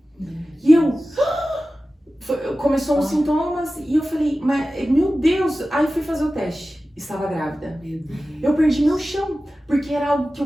E começou uns sintomas e eu falei, mas meu Deus, aí fui fazer o teste. Estava grávida. Eu perdi meu chão, porque era algo que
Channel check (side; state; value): both; normal; correlation 0.95